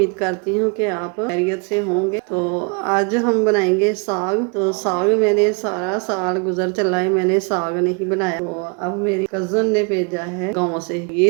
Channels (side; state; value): left; quieter; 35.0 dB